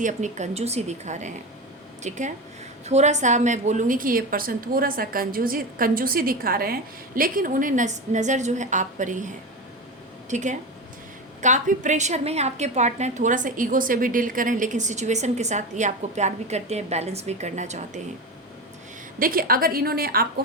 अपनी कंजूसी दिखा रहे हैं, ठीक है। थोड़ा सा मैं बोलूँगी कि ये पर्सन थोड़ा सा कंजूसी दिखा रहे हैं, लेकिन उन्हें नज़र जो है आप पर ही है, ठीक है। काफ़ी प्रेशर में है आपके पार्टनर, थोड़ा सा ईगो से भी डील करें, लेकिन सिचुएशन के साथ ये आपको प्यार भी करते हैं, बैलेंस भी करना चाहते हैं। देखिए, अगर इन्होंने आपको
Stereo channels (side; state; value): both; normal; correlation 0.21